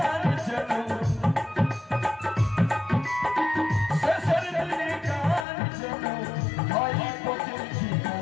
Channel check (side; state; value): right; drops out; at 5.5 s